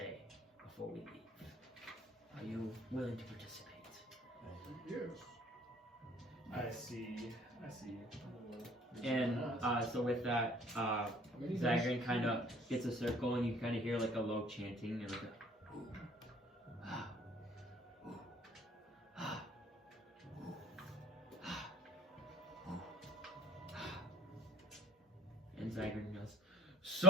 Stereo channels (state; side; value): normal; both; correlation 0.52